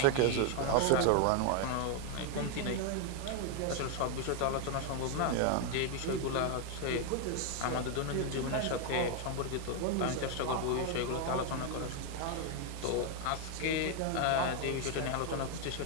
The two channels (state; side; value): different; both; correlation 0.01